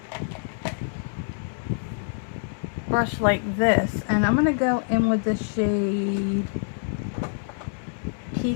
brush like this, and I'm going to go in with the shade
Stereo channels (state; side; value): silent; right; digital silence